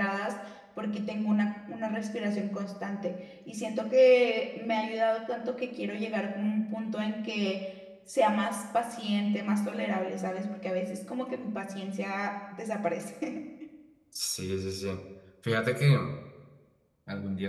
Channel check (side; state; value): both; identical; correlation 1.00